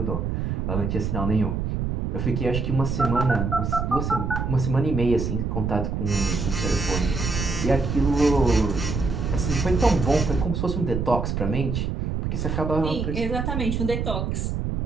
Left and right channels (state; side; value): noise; right; rumble, 1 dB below the sound